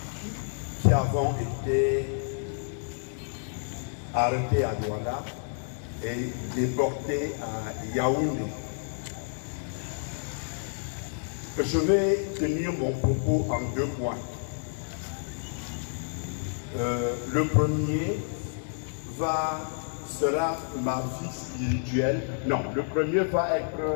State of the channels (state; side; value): silent; right; digital silence